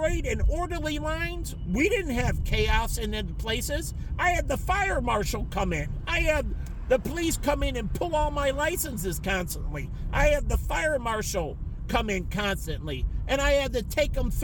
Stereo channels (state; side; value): identical; both; correlation 1.00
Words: and orderly lines. We didn't have chaos in the places. I had the fire marshal come in. I had the police come in and pull all my licenses constantly. I had the fire marshal come in constantly. And I had to take them